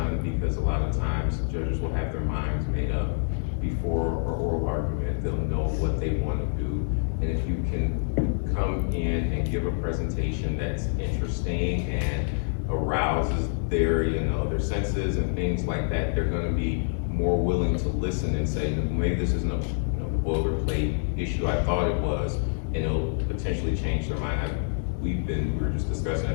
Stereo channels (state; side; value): silent; right; digital silence